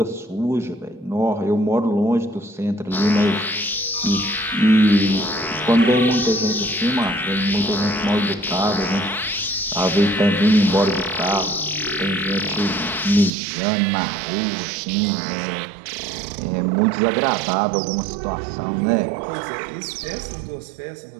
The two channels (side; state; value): left; drops out; at 13.3 s